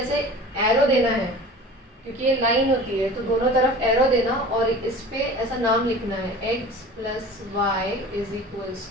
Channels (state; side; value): normal; both; correlation 0.39